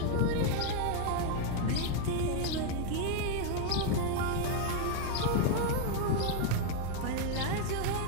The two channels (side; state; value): both; different; correlation 0.00